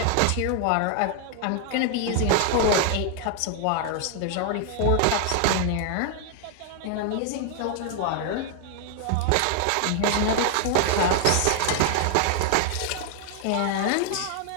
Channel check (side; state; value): both; different; correlation 0.00